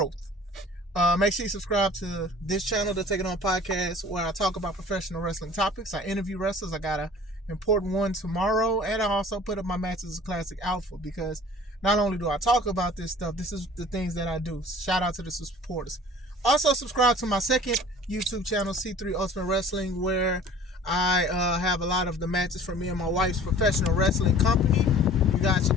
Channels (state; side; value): normal; both; correlation 0.46